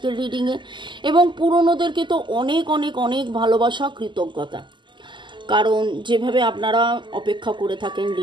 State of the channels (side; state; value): left; late; 0.23 ms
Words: রিডিংয়ে। এবং পুরনোদেরকে তো অনেক অনেক অনেক ভালোবাসা, কৃতজ্ঞতা, কারণ যেভাবে আপনারা অপেক্ষা করে থাকেন